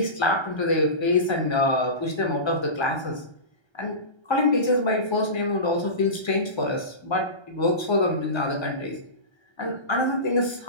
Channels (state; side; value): late; right; 1.3 ms